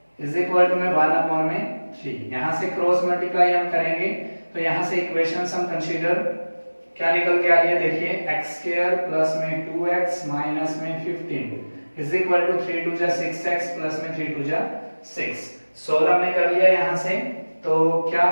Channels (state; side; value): inverted; both; correlation -1.00